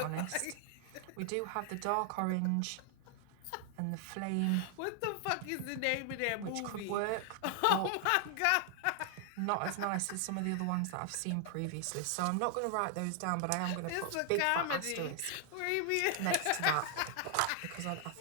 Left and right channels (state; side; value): different; both; correlation 0.00